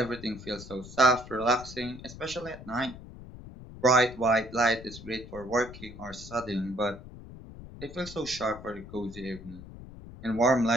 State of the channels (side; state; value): left; noise; rumble, 15 dB below the sound